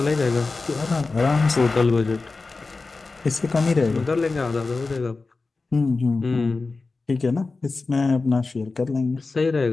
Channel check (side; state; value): right; quieter; 3.8 dB